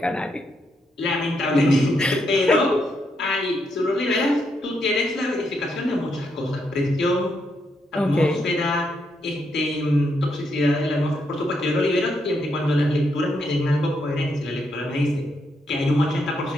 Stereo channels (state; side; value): normal; both; correlation 0.79